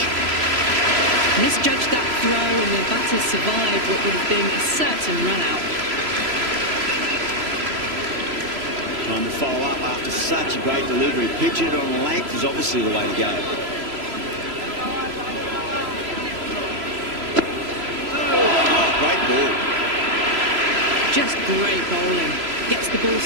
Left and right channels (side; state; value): left; late; 3.0 ms